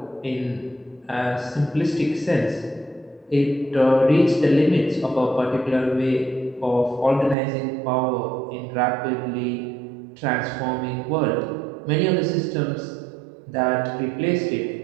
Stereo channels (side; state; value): left; drops out; at 7.4 s